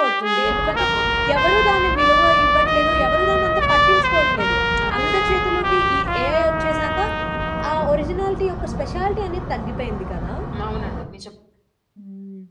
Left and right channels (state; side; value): identical; both; correlation 1.00